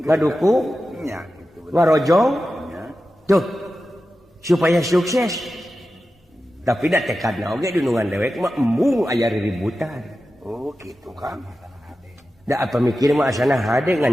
ngadukung, Nya gitu. ngarojong. Nya. Tuh, supaya sukses. Tapi da tekadna oge dunungan dewek mah embung aya ributan. Oh, gitu kan. Da apa mikir mah asana hade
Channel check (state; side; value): normal; both; correlation 0.93